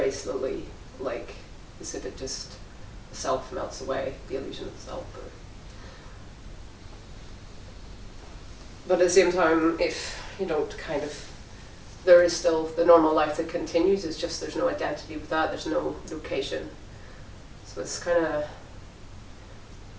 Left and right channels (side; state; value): both; identical; correlation 1.00